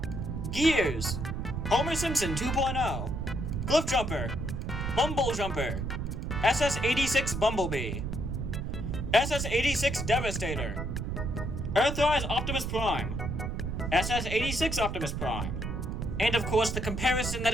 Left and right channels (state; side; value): noise; right; rumble, 3 dB below the sound